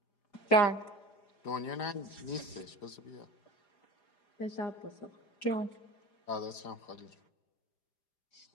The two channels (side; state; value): right; late; 4.9 ms